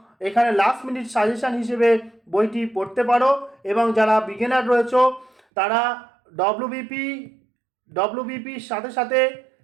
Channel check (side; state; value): left; drops out; at 5.4 s